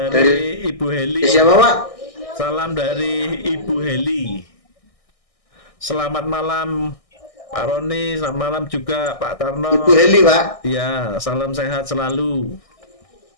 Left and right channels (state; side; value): late; right; 1.6 ms